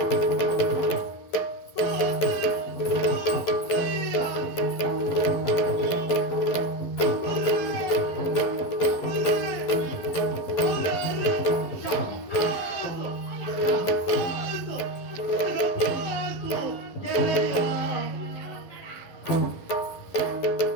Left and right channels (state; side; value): late; right; 11 ms